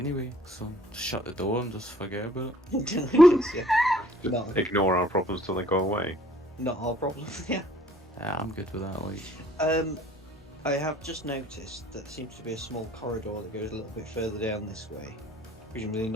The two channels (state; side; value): normal; both; correlation 0.57